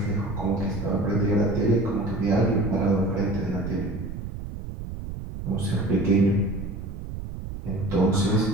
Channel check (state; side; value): noise; right; rumble, 8 dB below the sound